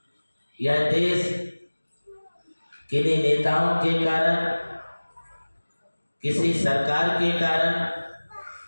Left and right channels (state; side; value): inverted; both; correlation -1.00